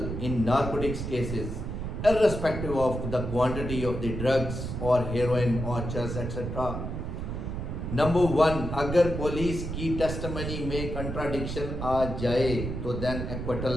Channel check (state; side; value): noise; right; rumble, 5 dB below the sound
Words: in narcotics cases, irrespective of the quantity of the drugs or heroin or chess etc. Number 1, अगर police की testimony में contradiction आ जाए तो then